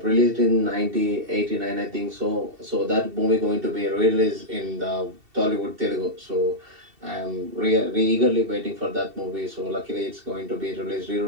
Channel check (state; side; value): late; left; 2.7 ms